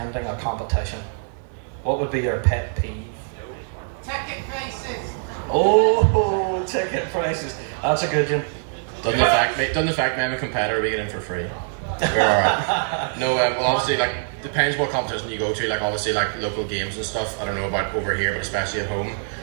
a competition? What would be your pet peeve? Ticket prices. Oh, ticket prices. That's a good one. Doesn't the fact I'm a competitor we get in for free? We're alright. No, well obviously like depends what competition you go to. Like obviously like local games and stuff. I don't know about over here, but especially at home,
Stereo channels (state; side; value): silent; left; 63 dB below the other